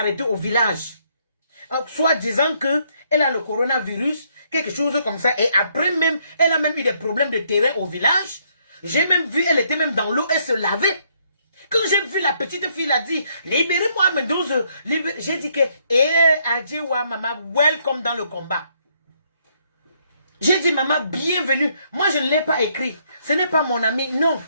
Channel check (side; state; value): both; inverted; correlation -0.71